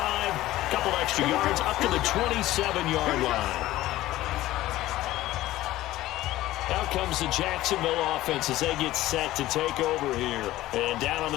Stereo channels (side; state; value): right; quieter; 15.9 dB